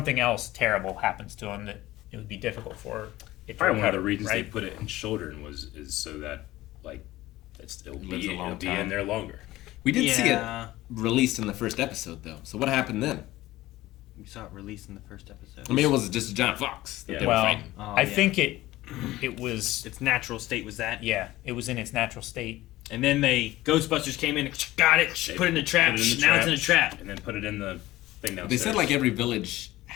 else terrible happens to him that it would be difficult for it to Probably one of the recover, reasons right? they put it in children is so that like it'll Lives a long be in time. there longer. We did see it Yeah. released in the first episode though. So what happened then? We saw it released in the first episode. I mean, it was just a giant fox that Yeah. they were Well, fighting. Oh, I yeah. think it was its natural state was that. it was in its natural state. And then Ghostbusters came in, got it, They put it in a trap. put it in the Now it's in a trap. and then put it in the thing downstairs. They said like every village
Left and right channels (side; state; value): right; quieter; 16.9 dB